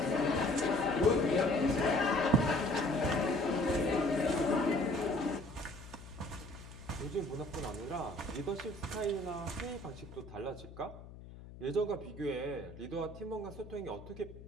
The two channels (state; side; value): noise; left; hum, 16 dB below the sound